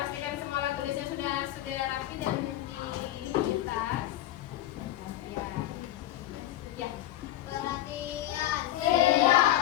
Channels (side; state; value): right; quieter; 14.1 dB